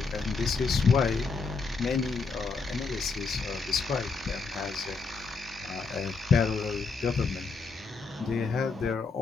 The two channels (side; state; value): right; quieter; 4.5 dB